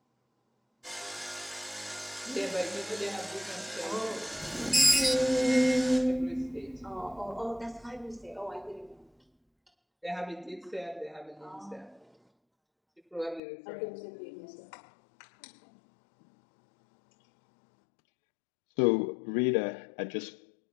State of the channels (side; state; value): right; drops out; at 13.4 s